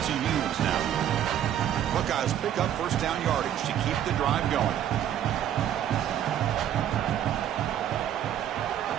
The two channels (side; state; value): left; quieter; 10.5 dB